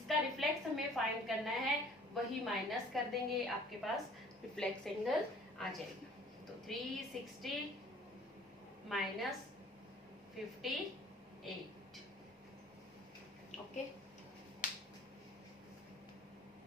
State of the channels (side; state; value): both; normal; correlation 0.52